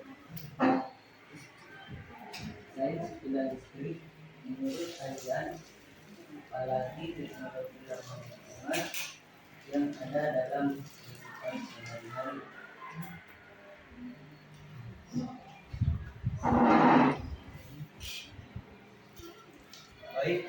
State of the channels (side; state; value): both; identical; correlation 1.00